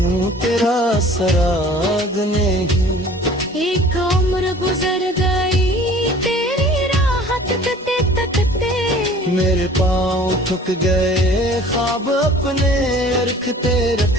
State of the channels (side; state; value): both; normal; correlation 0.48